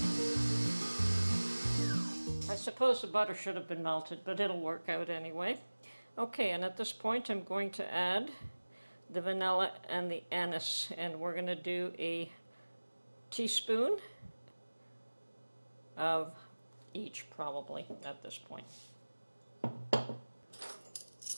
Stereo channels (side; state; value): both; inverted; correlation -1.00